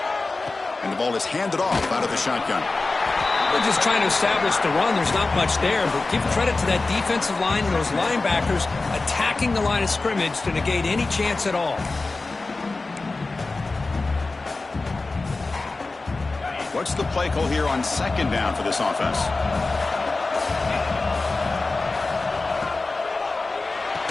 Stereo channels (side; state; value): right; quieter; 3.5 dB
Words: Ball is handed off out of the shotgun. They're just trying to establish the run. There's not much there, but give credit to that defensive line and those linebackers attacking the line of scrimmage to negate any chance at all. What's the play call here on second down for this offense?